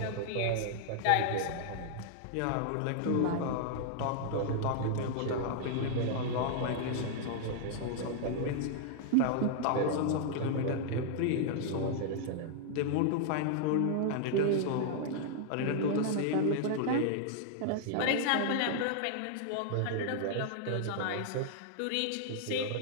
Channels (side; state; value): both; different; correlation -0.01